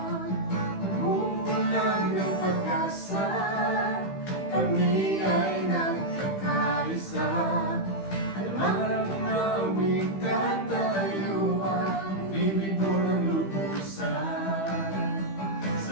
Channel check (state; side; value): late; right; 15 ms